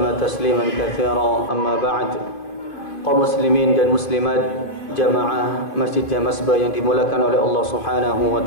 تسليما كثيرا. أما بعد, kaum muslimin dan muslimat jamaah Masjid Jamasbah yang dimulakan oleh Allah Subhanahu wa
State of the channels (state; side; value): late; right; 2.6 ms